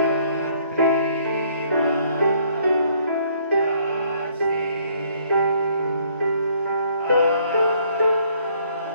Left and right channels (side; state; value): both; inverted; correlation -0.64